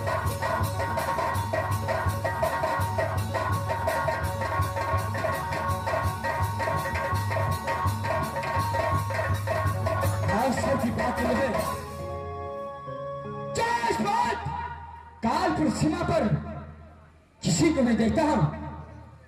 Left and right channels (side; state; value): both; identical; correlation 1.00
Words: कानपुर सीमा पर किसी को मैं देखता हूं